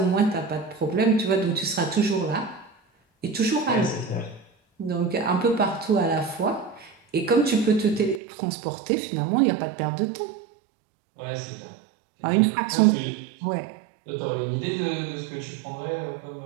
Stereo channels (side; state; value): left; drops out; at 8.2 s